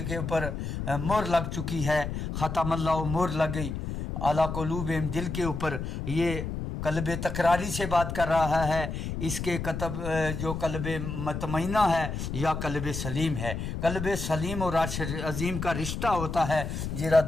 کے اوپر مہر لگ چکی ہے، ختم اللہ مہر لگ گئی اعلیٰ قلوبہم، دل کے اوپر. یہ قلب تکراری سے بات کر رہا ہے، اس کے کتب جو قلب مطمئنہ ہے یا قلب سلیم ہے. قلب سلیم اور عرش عظیم کا رشتہ ہوتا ہے، جرا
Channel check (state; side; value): noise; left; rumble, 5 dB below the sound